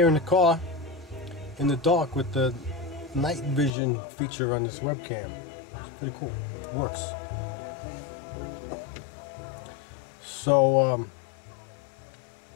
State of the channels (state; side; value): drops out; right; at 3.7 s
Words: in the car, in the dark with the night vision feature on this webcam. It's pretty cool, it works. So,